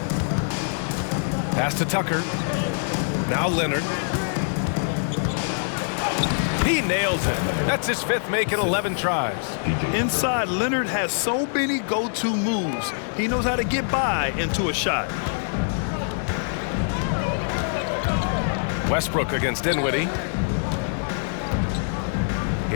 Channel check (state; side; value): silent; right; digital silence